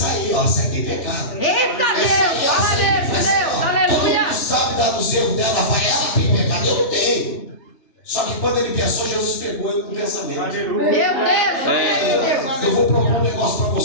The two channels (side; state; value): right; late; 3.4 ms